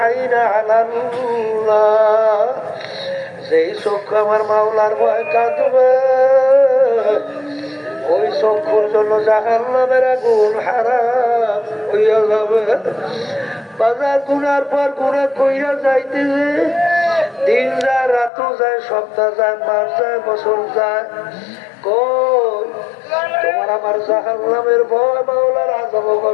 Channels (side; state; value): right; drops out; at 18.3 s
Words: আইনা আলাল্লাহ। যেই চক্ষু আমার মাওলার ভয় কাঁদবে ওই চক্ষুর জন্য জাহান্নামের আগুন হারাম হইয়া যাবে। বাজার গুনার পর গুনাহ কইরা যাইতেছে, দিন যায়, রাত যায়, সপ্তাহ যায়, মাস যায়, বছর যায়, কই তোমার আমার জাহান্নামের ভয়, মাওলার আযাব